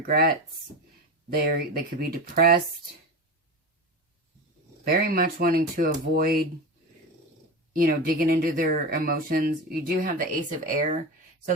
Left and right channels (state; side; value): normal; both; correlation 0.24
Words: They could be depressed. Very much wanting to avoid, you know, digging into their emotions. You do have the Ace of Air.